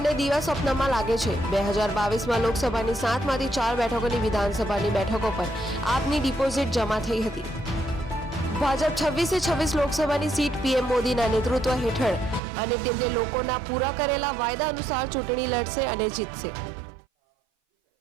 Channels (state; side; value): drops out; left; at 12.4 s